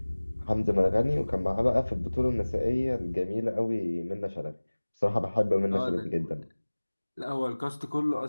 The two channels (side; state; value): both; inverted; correlation -1.00